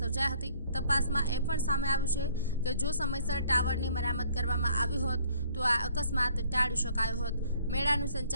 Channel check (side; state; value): both; inverted; correlation -0.59